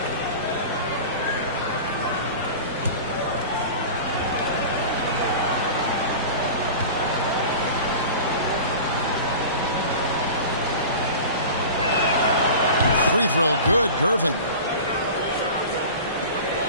Free throw good, Gervin.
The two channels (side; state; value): both; inverted; correlation -0.35